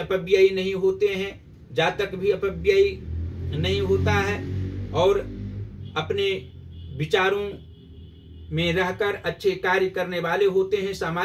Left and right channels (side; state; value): both; identical; correlation 1.00